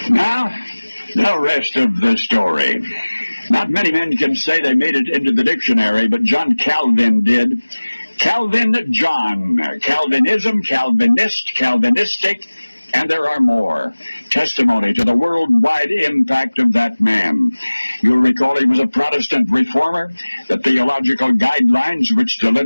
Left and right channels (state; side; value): inverted; both; correlation -1.00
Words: Now, the rest of the story. Not many men can say they made it into the dictionary, but John Calvin did. Calvin John, Calvinism, Calvinist, Calvinistic, and there are more. Testimony to the worldwide impact of that man. You'll recall he was a Protestant reformer. The theological guidelines which